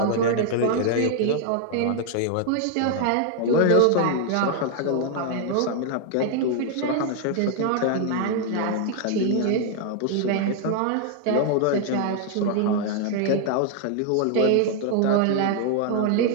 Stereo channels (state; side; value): different; both; correlation 0.00